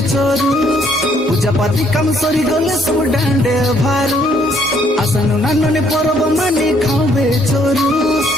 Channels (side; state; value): both; normal; correlation 0.67